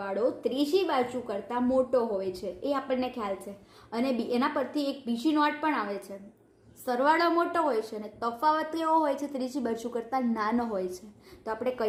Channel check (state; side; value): identical; both; correlation 1.00